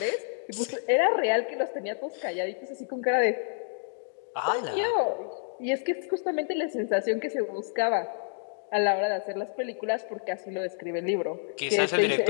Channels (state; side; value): silent; right; 59 dB below the other